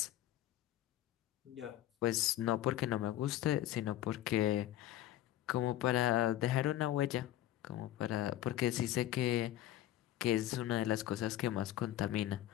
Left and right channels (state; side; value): quieter; right; 13.5 dB